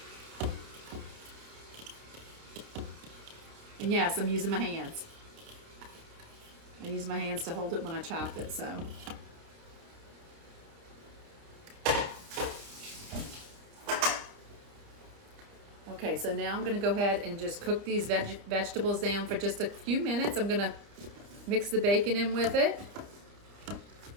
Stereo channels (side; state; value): left; late; 29 ms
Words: And yes, I'm using my hands. I use my hands to hold it when I chop it, so. Okay, so now I'm going to go ahead and just cook these vegetables down for just a few minutes. I'm going to mix the bacon in with it.